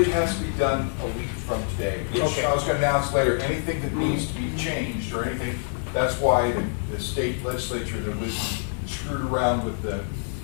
it has to be done a week from today. Which Okay. I was gonna announce later, anything that needs to be changed or anything, that's why the state legislature that was screwed around with the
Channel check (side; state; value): right; silent; digital silence